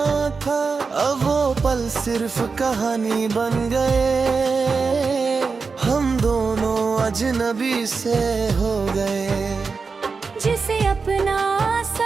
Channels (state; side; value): quieter; left; 4.8 dB